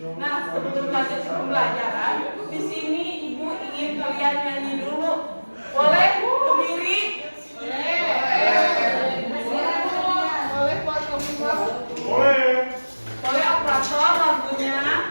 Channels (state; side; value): inverted; both; correlation -1.00